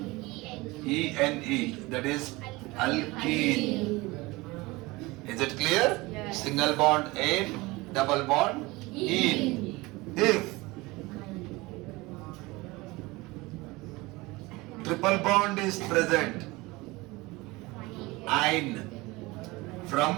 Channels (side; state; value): left; quieter; 22.2 dB